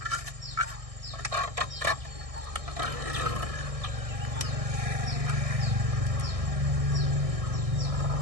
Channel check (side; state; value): left; late; 1.6 ms